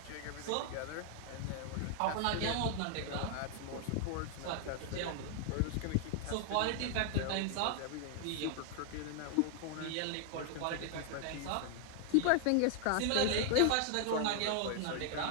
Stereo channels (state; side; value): different; both; correlation 0.00